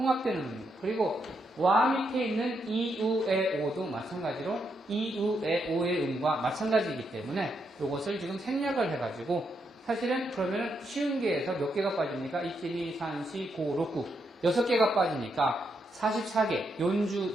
음입니다. 그리고 와 밑에 있는 이, 우, 에, 오도 마찬가지로 이, 우, 에, 오의 음과 마찬가지이기 때문에 이것을 지금 생략을 해가지고 사실은 그러면 쉬운 개에서 몇 개가 빠집니까? 1, 2, 3, 4, 5, 6, 9 6개가 빠지니까 44개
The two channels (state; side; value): normal; both; correlation 0.80